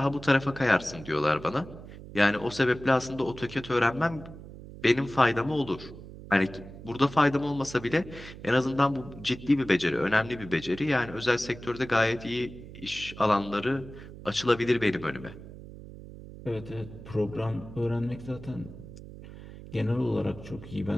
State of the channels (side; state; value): right; noise; hum, 15 dB below the sound